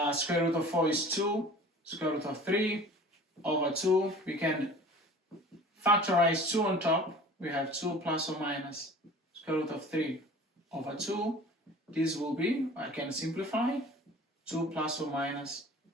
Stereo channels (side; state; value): both; normal; correlation 0.43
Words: Square root of 4 is 2. Square root of 3 over 2. We can factorize 2 on top. We have 2 plus or minus square root of 3 over 2. This will be, I can simplify, 2 plus or minus